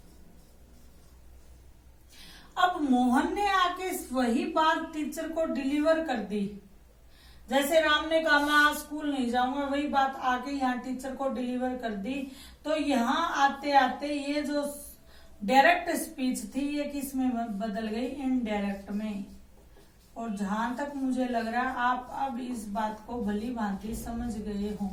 अब मोहन ने आके वही बात टीचर को डिलीवर कर दी। जैसे राम ने कहा मैं आज स्कूल नहीं जाऊंगा, वही बात आके यहाँ टीचर को डिलीवर कर दी। तो यहाँ आते आते ये जो डायरेक्ट स्पीच थी ये किस में बदल गई, इनडायरेक्ट में। और जहां तक मुझे लग रहा है आप अब इस बात को भली भांति समझ गए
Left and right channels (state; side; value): identical; both; correlation 1.00